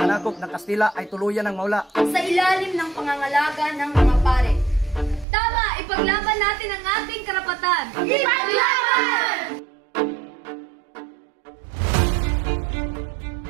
ng Kastila ay tuluyan ng mawala. Sa ilalim ng pangangalaga ng mga pare. Tama! Ipaglaban natin ang ating karapatan! Ipaglaban!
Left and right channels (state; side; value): drops out; left; at 5.2 s